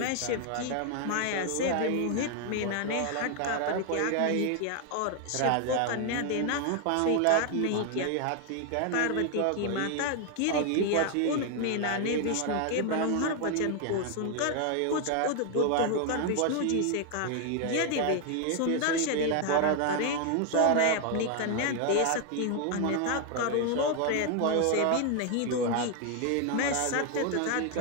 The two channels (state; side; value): different; both; correlation 0.00